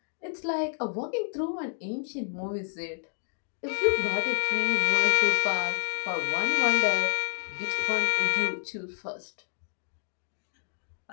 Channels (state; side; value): silent; right; 59 dB below the other